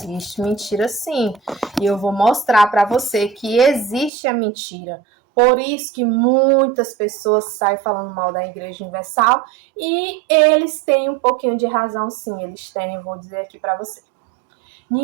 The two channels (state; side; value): drops out; left; at 4.1 s